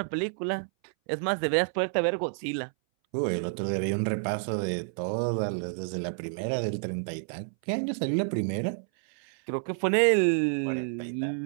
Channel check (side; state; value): left; silent; 59 dB below the other